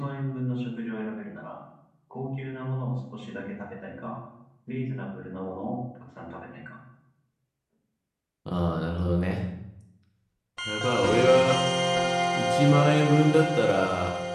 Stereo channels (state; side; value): identical; both; correlation 1.00